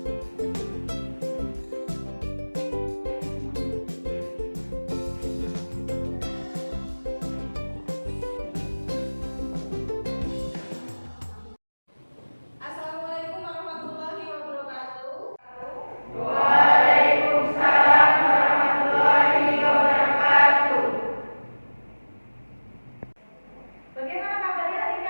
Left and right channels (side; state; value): both; inverted; correlation -1.00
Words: Bagaimana kabarnya hari ini